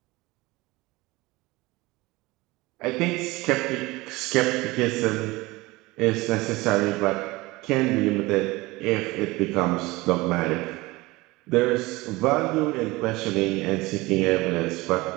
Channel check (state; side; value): quieter; left; 21.3 dB